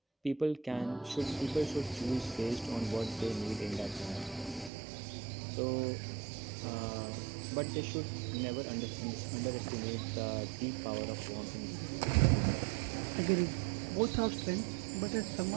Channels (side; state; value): left; drops out; at 4.7 s